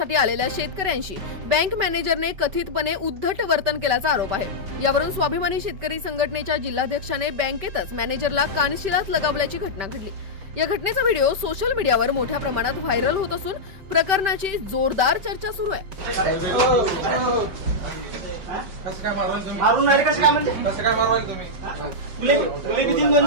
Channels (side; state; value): left; late; 5.2 ms